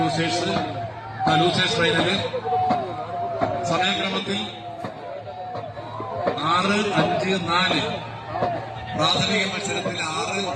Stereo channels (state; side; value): identical; both; correlation 1.00